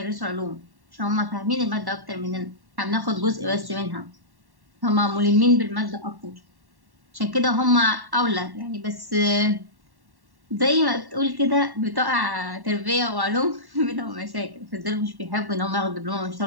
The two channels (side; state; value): left; late; 1.1 ms